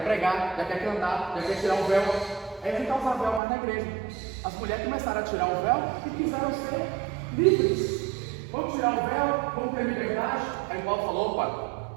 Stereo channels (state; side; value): drops out; left; at 3.4 s